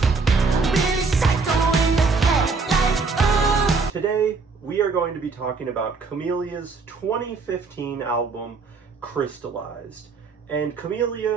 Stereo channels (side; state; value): left; quieter; 4.4 dB